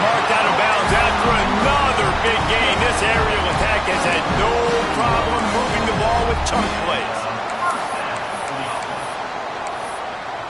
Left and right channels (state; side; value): identical; both; correlation 1.00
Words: marked out of bounds after another big gain. This aerial attack has had no problem moving the ball with chunk plays.